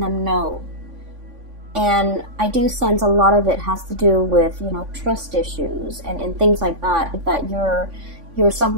know. And I do sense a lot of it has to do with, you know, trust issues and things like that, that you're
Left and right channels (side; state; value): left; late; 3.5 ms